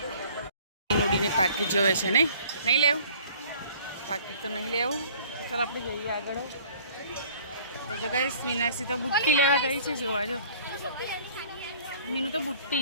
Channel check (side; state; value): both; inverted; correlation -0.52